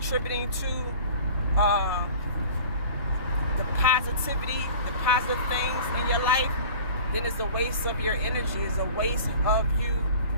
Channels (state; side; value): inverted; both; correlation -0.42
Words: to the positivity, the positive things in your life, then it's a waste of your energy. It's a waste of you